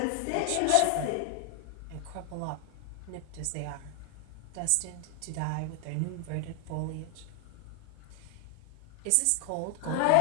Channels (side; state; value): both; different; correlation 0.00